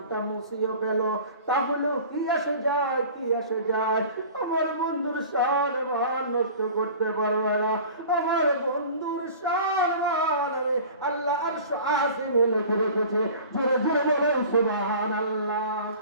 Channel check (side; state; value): both; inverted; correlation -0.42